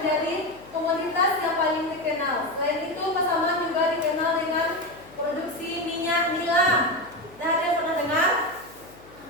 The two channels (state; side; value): noise; left; hum, 24 dB below the sound